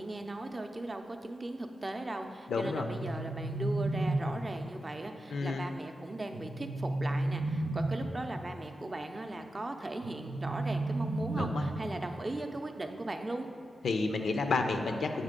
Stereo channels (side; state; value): both; normal; correlation 0.88